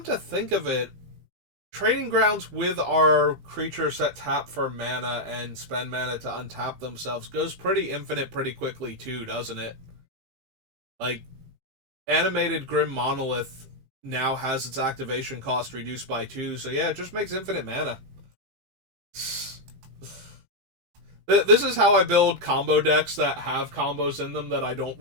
to think of it, Training Grounds with our creatures that tap for mana and spend mana to untap themselves goes pretty infinite pretty quickly too, doesn't it? Like, Animated Grim Monolith now has its activation cost reduced by 2, so yeah, it just makes infinite mana. This is how I build combo decks that have combos in them that I don't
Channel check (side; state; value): left; late; 17 ms